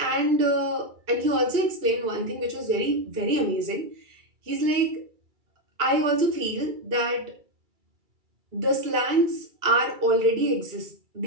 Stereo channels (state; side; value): late; left; 2.3 ms